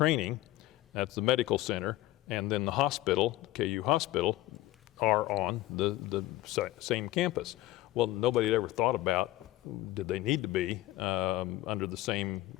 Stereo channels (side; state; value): right; quieter; 16.6 dB